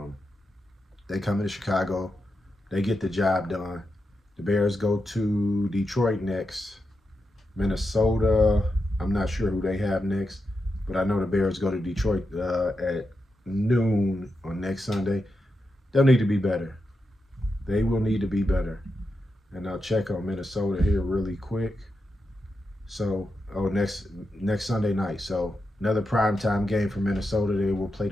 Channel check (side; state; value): both; normal; correlation 0.87